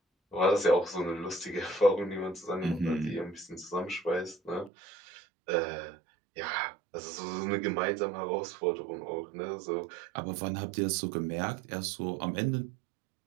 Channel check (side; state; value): left; drops out; at 4.7 s